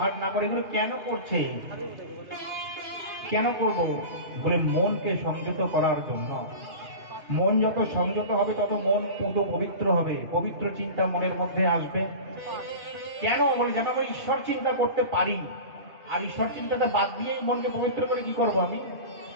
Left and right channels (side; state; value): left; late; 2.9 ms